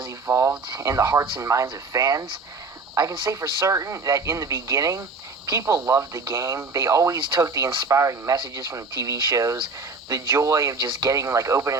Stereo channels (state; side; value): quieter; left; 4.0 dB